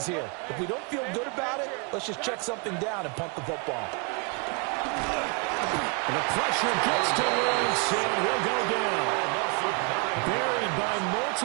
here. If we don't feel good about it, let's just check something down and punt the football. And the pressure gets to Lawrence, and he'll go down. Buried by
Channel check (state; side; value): quieter; left; 33.6 dB